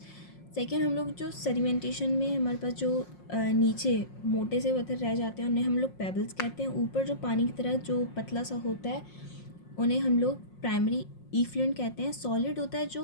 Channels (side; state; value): right; late; 5.6 ms